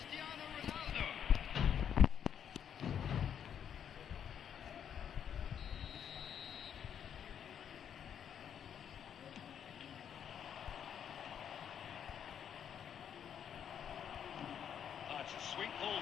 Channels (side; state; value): right; quieter; 8.6 dB